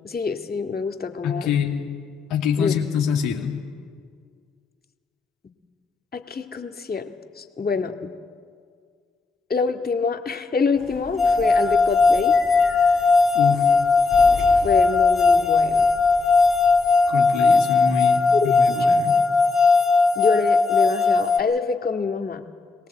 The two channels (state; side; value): quieter; right; 4.1 dB